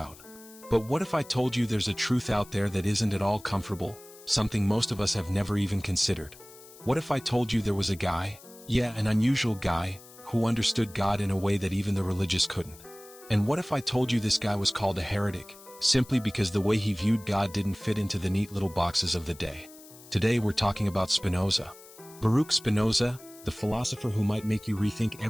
But what if I told you there's a truth out there that isn't at all comfortable, something most of us have never even considered? What if I told you there was a guy, an unusual guy, who understood God in a way that even the religious couldn't? And what if I told you this guy was called a heretic, simply because the way he viewed God didn't fit into the neat little boxes of the day? Today we're talking about Spinoza. Baruch Spinoza, the philosopher who might make you rethink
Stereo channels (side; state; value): left; noise; hiss, 21 dB below the sound